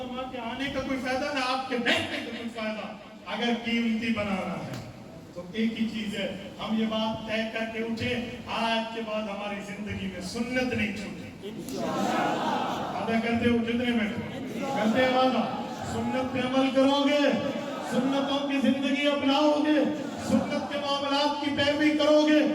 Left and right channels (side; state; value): both; identical; correlation 1.00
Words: کے آنے کا کوئی فائدہ، نہ آپ کے دیکھنے کا کوئی فائدہ۔ اگر قیمتی بنانا ہے تو ایک ہی چیز ہے، ہم یہ بات طے کر کے اٹھے آج کے بعد ہماری زندگی میں سنت نہیں چھوٹی، وعدہ کرتے ہو کتنے منٹ کرتے ہیں وعدہ، سنت پہ عمل کرو گے، سنتوں کی زندگی اپناؤ گے، سنت کے معاملات کی پیروی کرو گے،